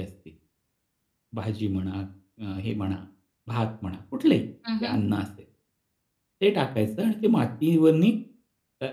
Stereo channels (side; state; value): both; identical; correlation 1.00